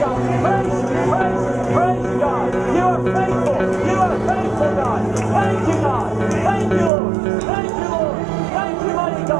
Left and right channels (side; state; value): left; drops out; at 6.9 s